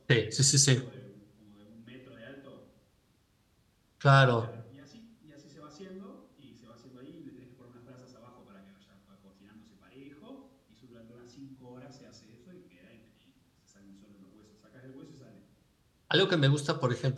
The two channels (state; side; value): identical; both; correlation 1.00